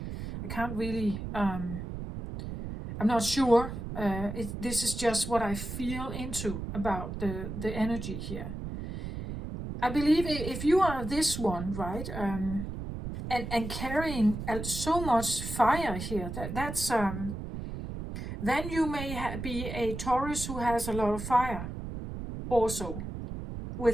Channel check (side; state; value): right; noise; rumble, 7 dB below the sound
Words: really. I'm not sure. This is just what I feel into about the energy here. I believe if you are this one, right, and carrying so much fire here, that's then you may be a Taurus who has a lot of fire also